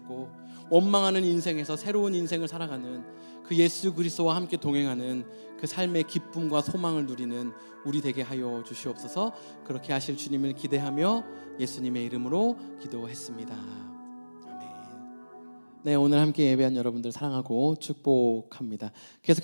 원망하는 인생에서 새로운 인생을 살아가는 그 예수 그리스도와 함께 동행하는 그 삶의 기쁨과 소망을 누리는 우리 되게 하여 주시옵소서. 그렇게 하실 주님을 기대하며 예수님의 이름으로 기도했습니다. 아멘. 네, 오늘 함께 예배한 여러분들 사랑하고 축복합니다.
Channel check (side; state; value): both; inverted; correlation -1.00